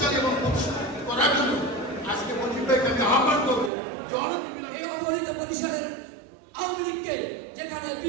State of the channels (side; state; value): left; drops out; at 3.7 s